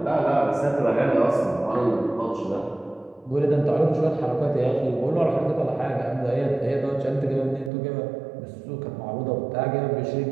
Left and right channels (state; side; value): drops out; left; at 7.7 s